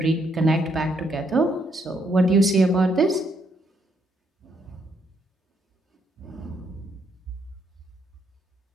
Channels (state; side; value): normal; both; correlation 0.73